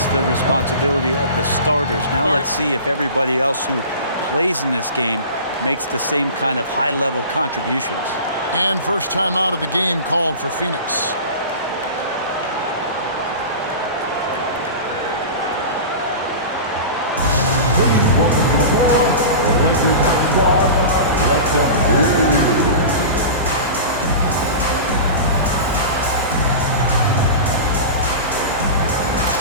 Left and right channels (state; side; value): inverted; both; correlation -0.32